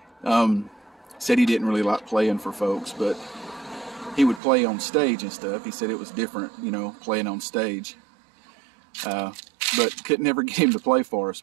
Said he didn't really like playing for folks, but he would play on stage and stuff. He said it was different, playing on stage. But could never get him to play for us.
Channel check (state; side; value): drops out; left; at 4.4 s